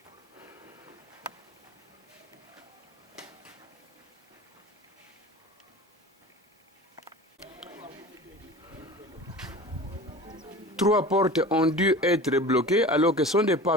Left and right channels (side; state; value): both; normal; correlation 0.37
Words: Trois portes ont dû être bloquées alors que ce sont des